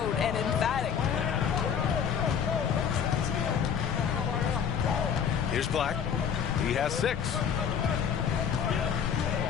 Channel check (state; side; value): quieter; right; 7.6 dB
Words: and emphatic. Here's Black. He has 6.